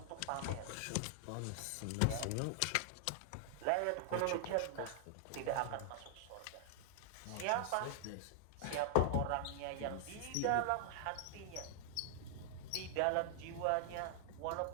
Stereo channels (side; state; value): both; different; correlation 0.00